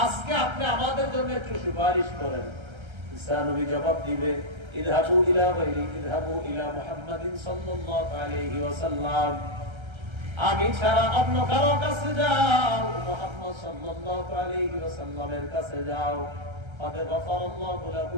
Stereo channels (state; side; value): late; left; 1.3 ms